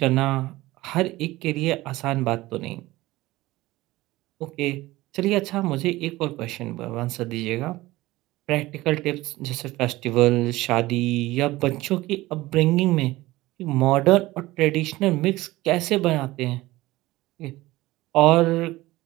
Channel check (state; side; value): quieter; left; 18.5 dB